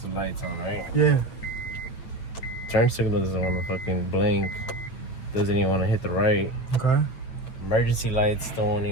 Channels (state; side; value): late; right; 9.1 ms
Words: the lights on, right? Yeah. Turn signal doesn't want to fucking blink. Doesn't even want to hit the right. Okay. Emergency lights don't